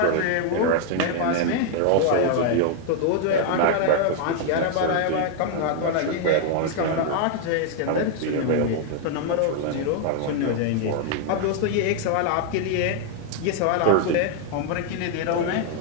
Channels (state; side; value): different; both; correlation 0.00